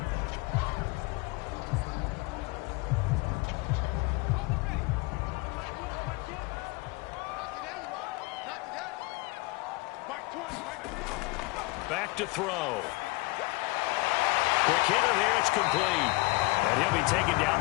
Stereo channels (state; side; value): quieter; right; 23.4 dB